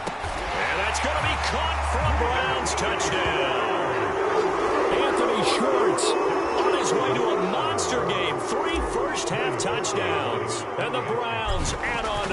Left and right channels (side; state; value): both; identical; correlation 1.00